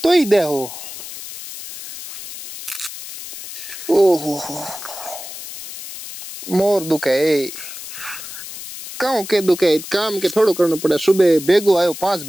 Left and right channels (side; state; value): left; noise; hiss, 11 dB below the sound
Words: ही दे हो ओहो मोर दुख है काम के दुख है काम के थोड़ो करना पड़े सुबह बेगो आयो 5